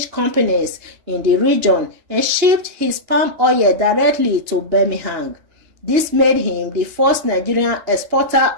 companies in the region and shipped his palm oil directly to Birmingham. This made him the first Nigerian exporter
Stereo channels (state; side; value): late; left; 2.9 ms